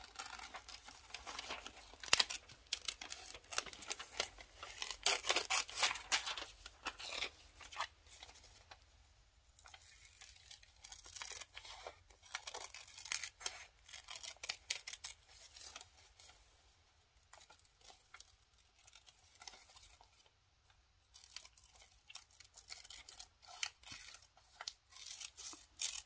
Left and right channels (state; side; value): identical; both; correlation 1.00